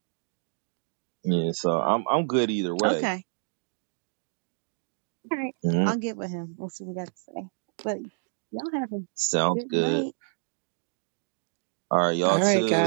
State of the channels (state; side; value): silent; left; digital silence